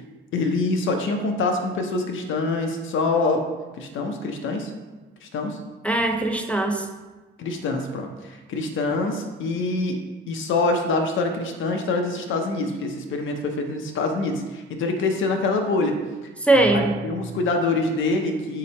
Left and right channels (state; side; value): normal; both; correlation 0.37